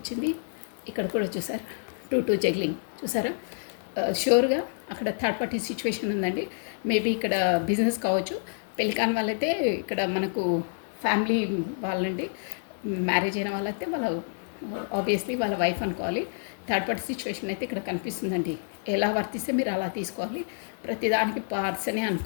ఇక్కడ కూడా చూసారా 2 జగ్లింగ్ చూసారా. షూర్గా అక్కడ థర్డ్ పార్టీ సిచ్యువేషన్ ఉందండి. మేబీ ఇక్కడ బిజినెస్ కావచ్చు. పెళ్లి కాని వాళ్ళైతే ఇక్కడ మనకు ఫ్యామిలీ వాళ్ళండి. మ్యారేజ్ అయిన వాళ్ళైతే వాళ్ళ ఆబ్వియస్లీ వాళ్ళ వైఫ్ అనుకోవాలి. థర్డ్ పార్టీ సిచ్యువేషన్ అయితే ఇక్కడ కనిపిస్తుందండి. ఎలా వర్తిస్తే మీరు అలా తీసుకోవాలి. ప్రతిదానికి పర్సనే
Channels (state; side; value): silent; right; digital silence